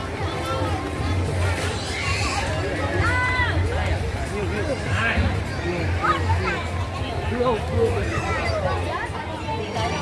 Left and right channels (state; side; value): identical; both; correlation 1.00